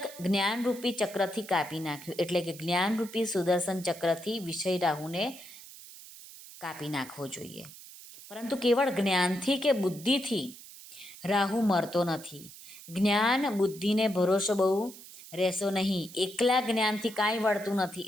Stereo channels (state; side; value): noise; right; hiss, 17 dB below the sound